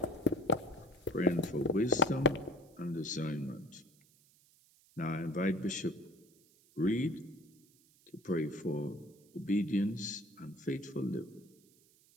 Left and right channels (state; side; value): noise; right; hiss, 30 dB below the sound